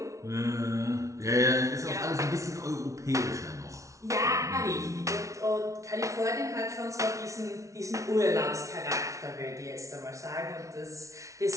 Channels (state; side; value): late; left; 0.15 ms